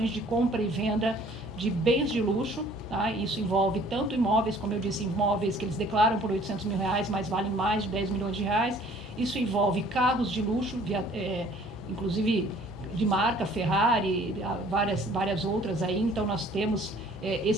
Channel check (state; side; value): normal; both; correlation 0.55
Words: de compra e venda de bens de luxo, tá? Isso envolve tanto imóveis, como eu disse, imóveis que eles declaram por R$800 mil, mas valem mais de 10 milhões de reais, Isso envolve carros de luxo, inclusive de marca, Ferrari, várias outras aí. Então, nós temos